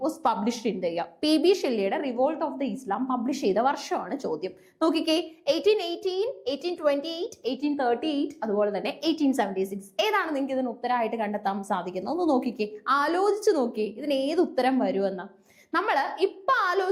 was published in the year. PB ഷെല്ലിയുടെ revolt of the Islam publish ചെയ്ത വർഷമാണ് ചോദ്യം. നോക്കിക്കേ, 1818, 1828, 1838, അതുപോലെ തന്നെ 1876. ഏതാണ് നിങ്ങൾക്ക് ഇതിന് ഉത്തരമായിട്ട് കണ്ടെത്താൻ സാധിക്കുന്നത്? ഒന്ന് നോക്കിക്കേ, ആലോചിച്ച് നോക്കിയേ, ഇതിന് ഏത് ഉത്തരം വരുമെന്ന്. നമ്മൾ ഇപ്പൊ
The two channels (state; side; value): identical; both; correlation 1.00